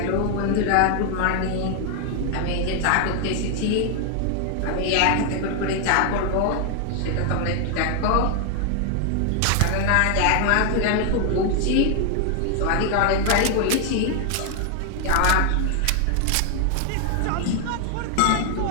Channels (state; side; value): different; both; correlation 0.00